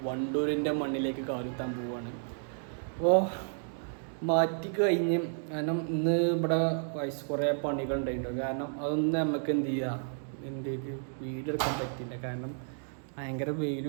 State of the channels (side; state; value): left; silent; digital silence